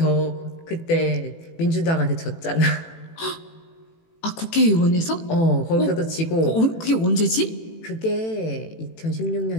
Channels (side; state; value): right; late; 18 ms